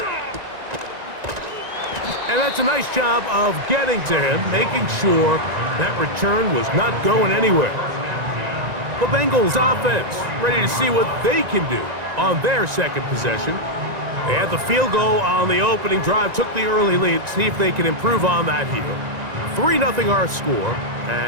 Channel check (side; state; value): left; late; 1.9 ms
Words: And that's a nice job of getting to him, making sure that return was not going anywhere. The Bengals offense ready to see what they can do on their second possession. They had the field goal on the opening drive, took the early lead. See if they can improve on that here. 3-0 our score